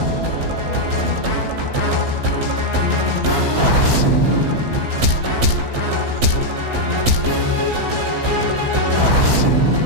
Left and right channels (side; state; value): left; late; 15 ms